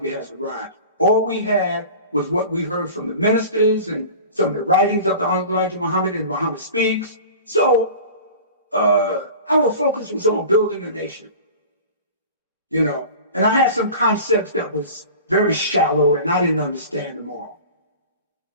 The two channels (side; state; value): both; inverted; correlation -0.38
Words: Has Arrived. All we had was what we heard from the ministers and some of the writings of the Honorable Elijah Muhammad and Muhammad Speaks. So our focus was on building a nation, you know. And I had some concepts that was very shallow and I didn't understand them all.